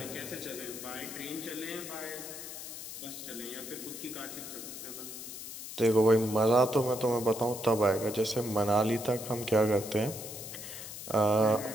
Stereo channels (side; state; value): left; noise; hiss, 10 dB below the sound